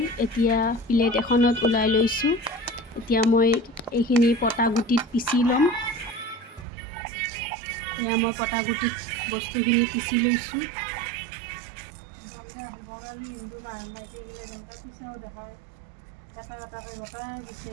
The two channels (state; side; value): drops out; left; at 6.7 s